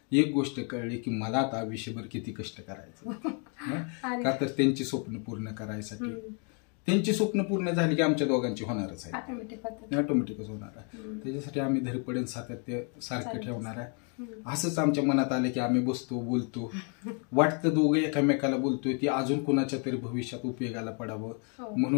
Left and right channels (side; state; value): right; quieter; 38.8 dB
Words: एक गोष्ट कळली की मला आता आयुष्यभर किती कष्ट करायचं. का तर त्यांची स्वप्न पूर्ण करायसाठी. त्यांची स्वप्न पूर्ण झाली की आमच्या दोघांची होणारच आहे, ऑटोमॅटिकच होणार आहे. त्याच्यासाठी आम्ही धडपडण सातत्य सारखं ठेवणार आहे. असंच आमच्या मनात आलं की आम्ही बसतो, बोलतो, वाटतं दोघं एकामेकाला बोलतोय ती अजून कोणाच्या तरी भविष्यात उपयोगाला पडावं